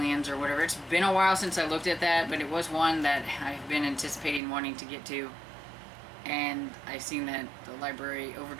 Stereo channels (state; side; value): drops out; left; at 4.4 s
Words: or whatever. It's been a while since I looked at that, but it was one that I've been anticipating wanting to get to. And I seen that the library